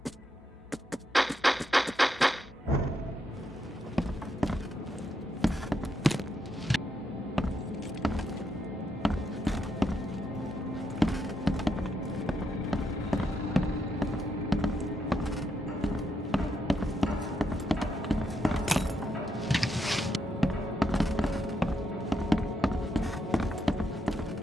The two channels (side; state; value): both; normal; correlation 0.80